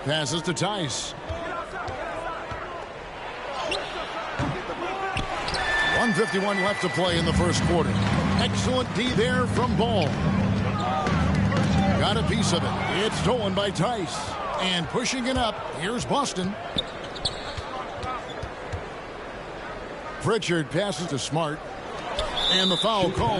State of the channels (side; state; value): both; identical; correlation 1.00